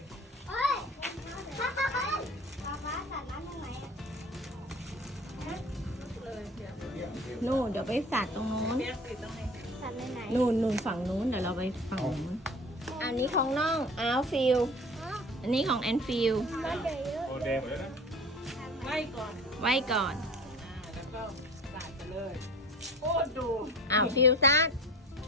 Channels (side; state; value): both; normal; correlation 0.41